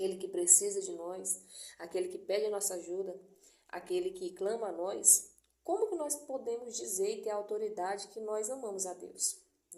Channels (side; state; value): both; identical; correlation 1.00